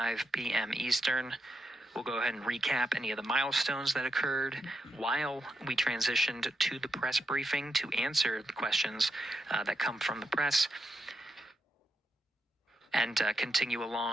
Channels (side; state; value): both; normal; correlation 0.84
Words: p.m. Eastern, we'll go ahead and recap any of the milestones that occurred while we transitioned to the press briefing to answer the questions that come from the press, and continue